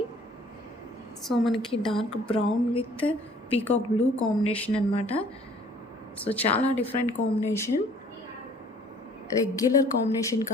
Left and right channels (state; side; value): normal; both; correlation 0.55